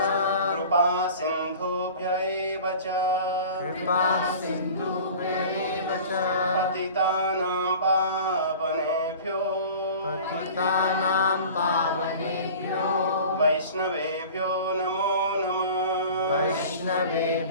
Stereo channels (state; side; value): inverted; both; correlation -0.41